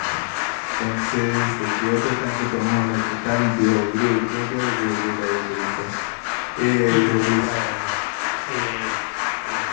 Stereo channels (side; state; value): right; silent; digital silence